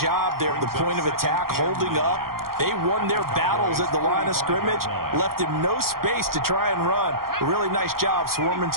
there at the point of attack, holding up. They won their battles at the line of scrimmage, left him no space to try and run. A really nice job swarming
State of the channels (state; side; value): late; left; 0.92 ms